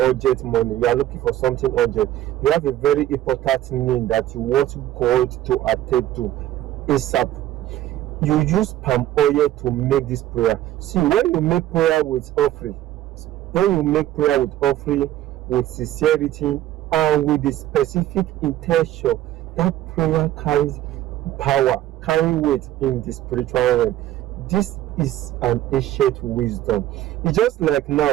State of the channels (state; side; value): quieter; left; 13.4 dB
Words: money, you are looking for something urgent, you have a very important need that you want God to attend to ASAP, you use palm oil to make this prayer. See, when you make prayer with offering, with sincerity and with the specific intention, that prayer carries power, carry weight in the spiritual realm. This is an ancient wisdom. It's just like